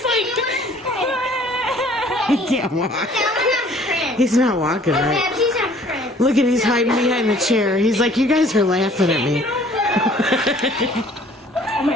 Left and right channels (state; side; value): normal; both; correlation 0.55